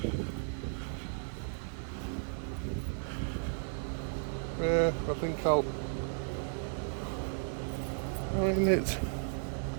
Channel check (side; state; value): left; silent; digital silence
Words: Yeah, I think I'll. I mean, it's.